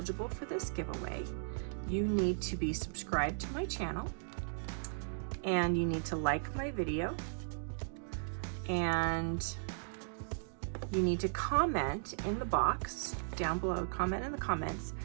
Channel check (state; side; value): silent; left; digital silence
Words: for this giveaway, you need to be subscribed to my channel, and you need to like my video, and you need to comment in the box down below, comment in the comments